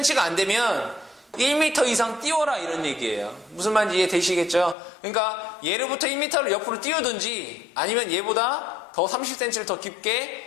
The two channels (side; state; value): right; drops out; at 4.8 s